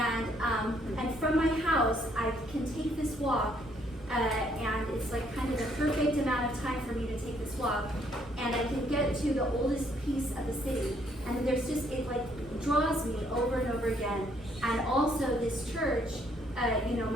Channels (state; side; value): normal; both; correlation 0.68